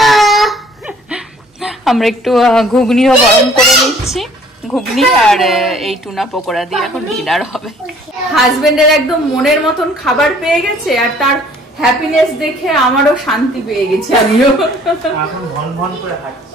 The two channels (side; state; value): both; normal; correlation 0.56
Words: আমরা একটু ঘুগনিও গরম করে নিচ্ছি, ঘুগনি আর এই টুনা পকোড়া দিয়ে এখন ডিনার হবে। হাজবেন্ডের একদম মনের মতন খাবার পেয়ে গেছে, আর তার হ্যাপিনেস দেখে আমারও শান্তি পেয়ে গেছে। আমিও